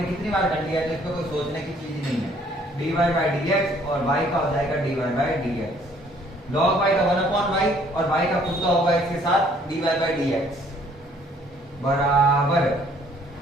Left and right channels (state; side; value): normal; both; correlation 0.61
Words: कितनी बार कर लिया है तो इसमें कोई सोचने की चीज नहीं है, dy बाई dx और y का हो जाएगा dy by dx, log y का 1/y और y का खुद का होगा इसके साथ dy बाई dx बराबर